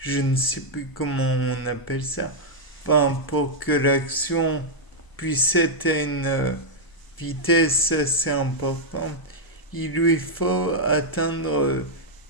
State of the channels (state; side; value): late; right; 1.0 ms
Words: ne sais plus comment on appelle ça. Enfin, pour que l'action puisse être à une vitesse assez importante, il lui faut atteindre